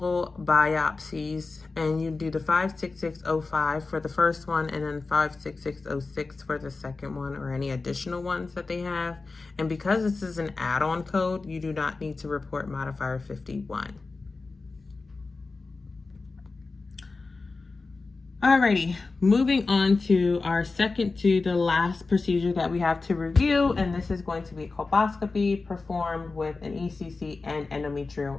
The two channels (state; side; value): quieter; right; 3.9 dB